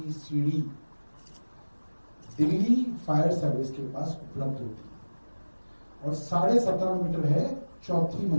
सीढ़ी दिल्ली फायर सर्विस के पास उपलब्ध होती है और 17.5 मीटर है चौथी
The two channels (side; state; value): both; inverted; correlation -1.00